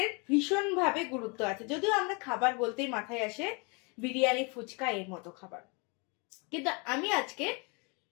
ভীষণভাবে গুরুত্ব আছে, যদিও আমরা খাবার বলতেই মাথায় আসে বিরিয়ানি, ফুচকা এর মতো খাবার। কিন্তু আমি আজকে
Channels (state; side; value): quieter; right; 31.7 dB